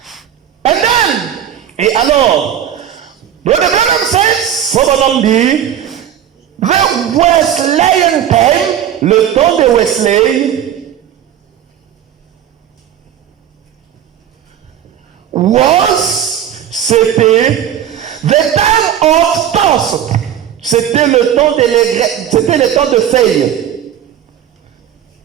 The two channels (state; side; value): quieter; left; 10.2 dB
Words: And then, Et alors, Brother Branham says, Frère Branham dit, the Wesleyan time le temps de Wesley c'était the time of Thorson. c'était le temps c'était le temps de feuilles.